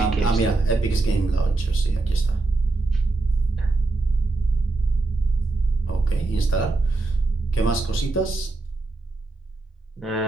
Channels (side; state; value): left; quieter; 3.3 dB